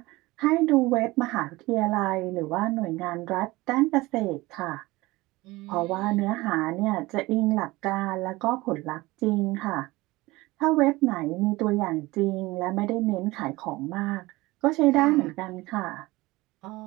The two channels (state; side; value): quieter; left; 20.6 dB